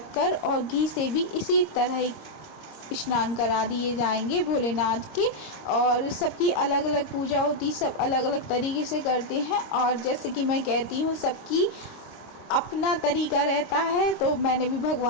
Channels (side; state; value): right; late; 26 ms